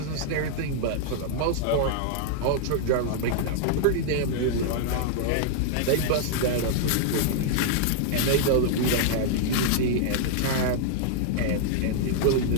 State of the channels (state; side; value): different; both; correlation -0.01